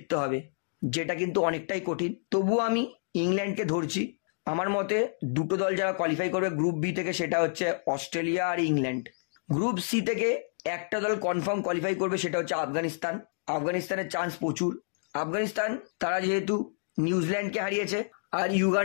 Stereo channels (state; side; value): silent; right; digital silence